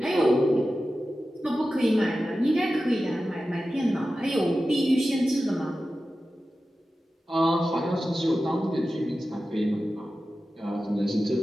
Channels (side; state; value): both; normal; correlation 0.94